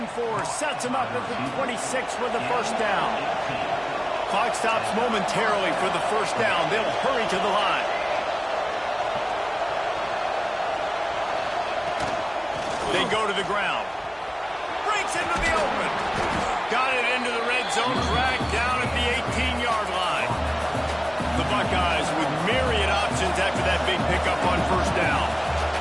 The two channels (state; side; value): identical; both; correlation 1.00